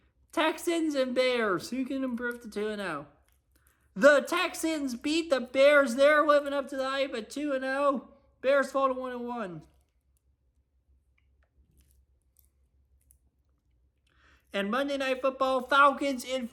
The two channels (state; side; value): identical; both; correlation 1.00